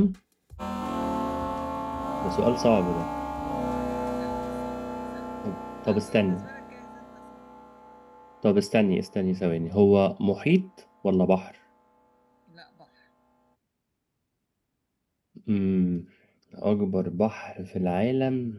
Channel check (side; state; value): both; identical; correlation 1.00